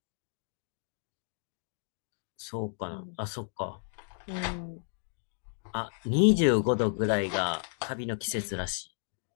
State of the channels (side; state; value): right; silent; digital silence